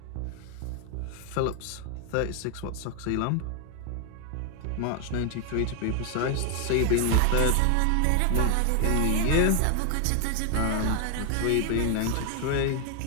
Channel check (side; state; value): both; different; correlation 0.00